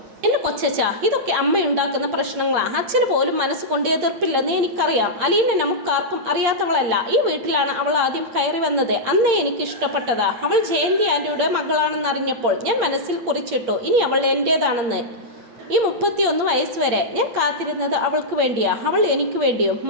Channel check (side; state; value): left; late; 8.8 ms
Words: എന്റെ കൊച്ചച്ച, ഇതൊക്കെ അമ്മയുണ്ടാക്കുന്ന പ്രശ്നങ്ങളാ. അച്ഛന് പോലും മനസ്സുകൊണ്ട് എതിർപ്പില്ലെന്ന് എനിക്കറിയാം. അലീന നമുക്കാർക്കും അറിയാത്തവളല്ല. ഈ വീട്ടിലാണ് അവൾ ആദ്യം കയറി വന്നത്. അന്നേ എനിക്ക് ഇഷ്ടപ്പെട്ടതാ. അവൾ ജയന്തി ആന്റിയുടെ മകളാണെന്നറിഞ്ഞപ്പോൾ ഞാൻ മനസ്സിൽ കുറിച്ചിട്ടു, ഇനി അവൾ എന്റേതാണെന്ന്. ഈ 31 വയസ്സ് വരെ ഞാൻ കാത്തിരുന്നത് അവൾക്ക് വേണ്ടിയാ, അവൾ എനിക്ക് വേണ്ടിയും.